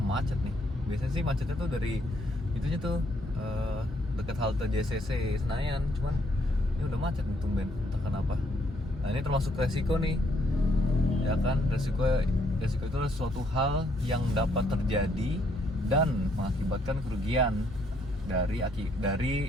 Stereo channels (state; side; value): normal; both; correlation 0.70